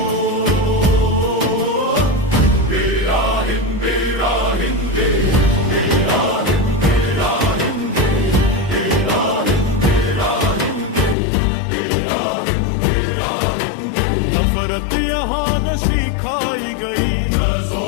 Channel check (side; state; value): right; drops out; at 11.2 s